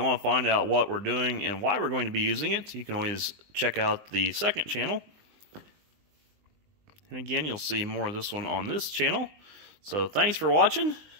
want to find out what we're doing and why we're going to be using it, you can always check out the second channel. And again, you'll see more of this one on this channel. So thanks for watching,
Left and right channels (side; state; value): left; late; 20 ms